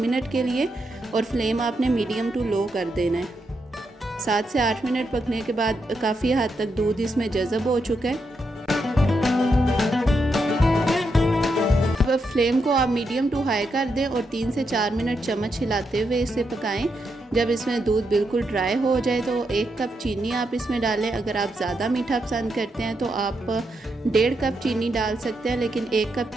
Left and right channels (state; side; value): normal; both; correlation 0.82